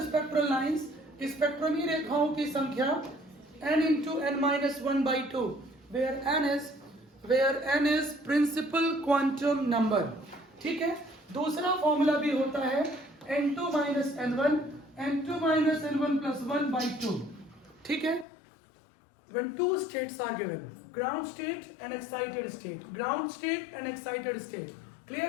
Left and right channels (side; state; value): right; drops out; at 18.2 s